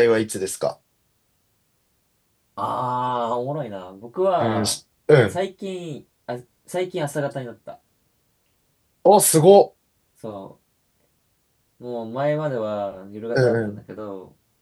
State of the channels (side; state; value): both; identical; correlation 1.00